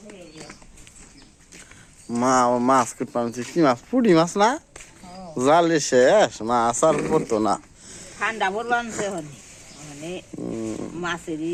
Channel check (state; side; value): identical; both; correlation 1.00